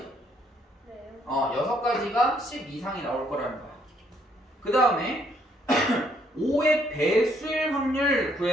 네. 6가지가 10 이상이 나올 거라는 거야. 그 다음에 5의 배수일 확률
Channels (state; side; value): normal; both; correlation 0.69